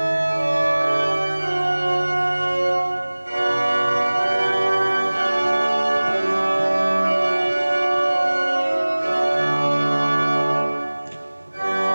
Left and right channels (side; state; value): both; inverted; correlation -1.00